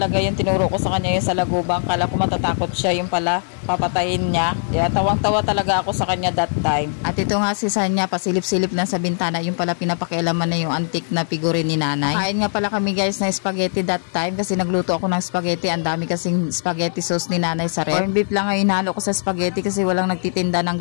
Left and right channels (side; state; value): right; silent; digital silence